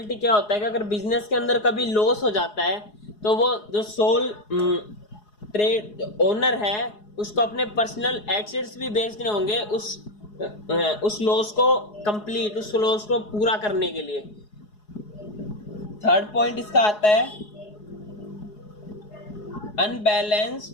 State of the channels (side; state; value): right; late; 4.8 ms